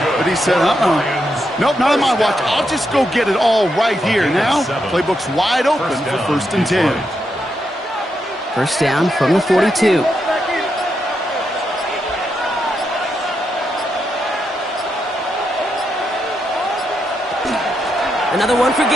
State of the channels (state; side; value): normal; both; correlation 0.83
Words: but he said, nope, not on my watch. I'll just go get it all right here. Now, playbook's wide open for first and 10. First down from the 42. Another one for